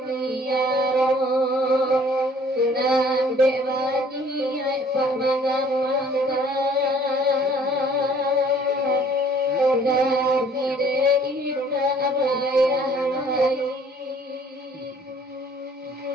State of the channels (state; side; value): normal; both; correlation 0.56